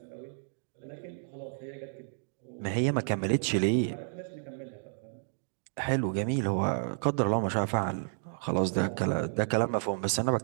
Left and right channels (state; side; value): silent; left; digital silence